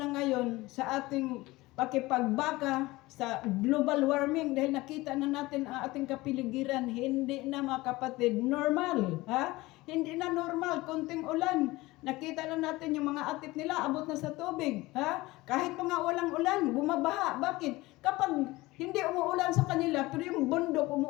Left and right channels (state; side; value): quieter; right; 20.1 dB